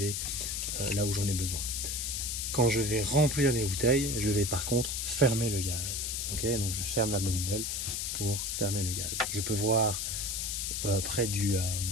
là où j'en ai besoin. Quand je vais remplir les bouteilles, je vais par contre fermer le gaz. Okay, donc je ferme la manivelle pour fermer le gaz. Je peux voir près de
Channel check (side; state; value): left; noise; hiss, 2 dB below the sound